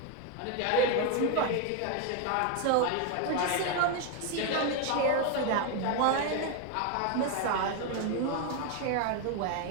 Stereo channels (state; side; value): different; both; correlation 0.01